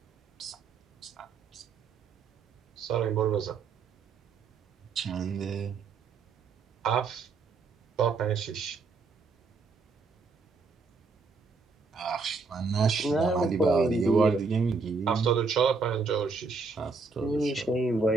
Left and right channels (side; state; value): left; quieter; 4.4 dB